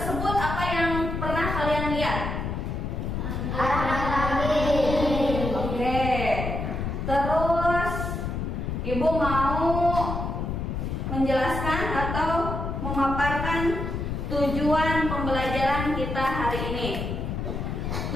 apa yang pernah kalian lihat? Oke. Terus Ibu mau menjelaskan atau memaparkan tujuan pembelajaran kita hari ini.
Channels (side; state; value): left; noise; rumble, 3 dB below the sound